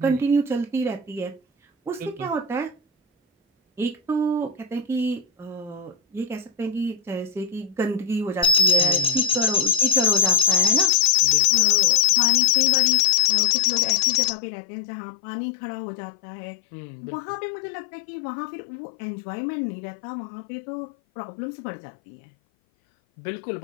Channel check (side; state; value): right; drops out; at 10.9 s